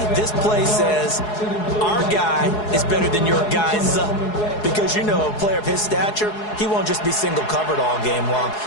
this play says our guy is better than your guys. Because, you know, a player of his stature, he won't just be single covered all game long.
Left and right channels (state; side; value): late; right; 4.7 ms